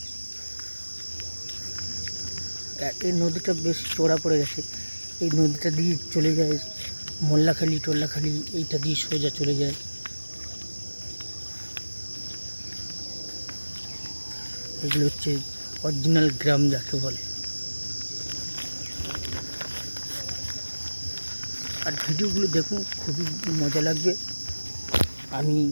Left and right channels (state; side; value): inverted; both; correlation -1.00